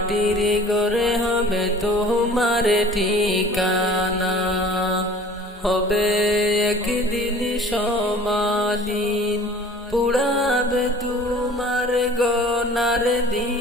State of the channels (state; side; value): normal; both; correlation 0.47